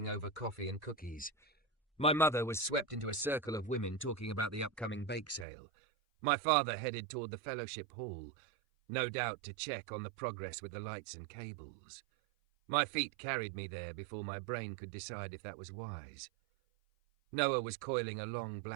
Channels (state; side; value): drops out; left; at 5.5 s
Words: over coffee and cookies. My mother was swept into a circle of women talking about the upcoming bake sale. My father headed toward the fellowship hall, no doubt to check on the progress with the lights and cables. My feet carried me there before my brain could decide if that was wise. Noah was coiling a long